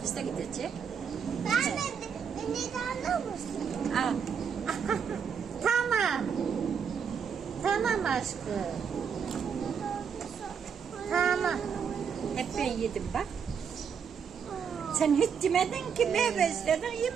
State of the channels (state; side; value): quieter; left; 6.9 dB